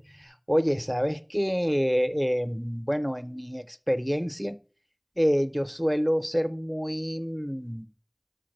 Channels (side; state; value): both; identical; correlation 1.00